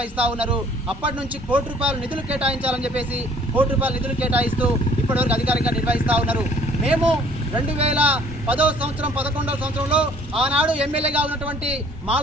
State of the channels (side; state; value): both; normal; correlation 0.57